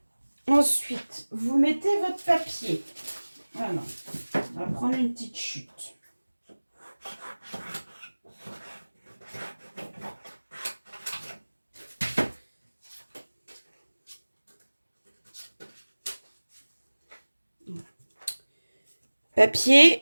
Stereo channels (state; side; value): inverted; both; correlation -1.00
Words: Ensuite, vous mettez votre papier. Voilà. On va prendre une petite chute. Papier,